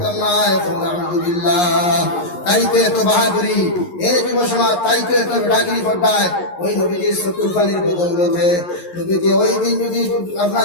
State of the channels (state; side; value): late; right; 11 ms